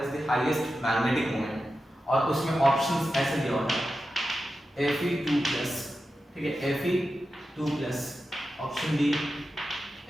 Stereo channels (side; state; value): both; normal; correlation 0.91